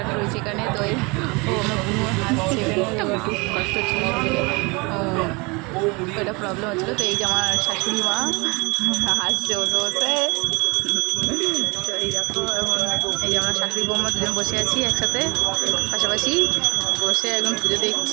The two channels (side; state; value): left; quieter; 27.6 dB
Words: রয়েছে এখানে। তো ও আমার বুনু হাসছে এখানে, ওর খুব কষ্ট হচ্ছিল শরীরে, এটা প্রবলেম হচ্ছিলো। তো এই যে আমার শাশুড়ি মা হাসছে বসে বসে। তো এই দেখো, এখন এই যে আমরা শাশুড়ি বৌমা দুজন বসে আছি একসাথে পাশাপাশি বসে এখন পুজো